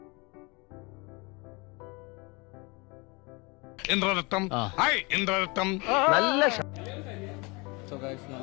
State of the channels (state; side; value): quieter; right; 27.6 dB